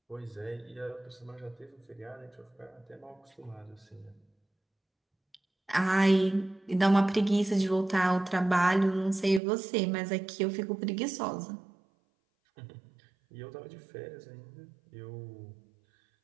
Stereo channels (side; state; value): left; drops out; at 9.4 s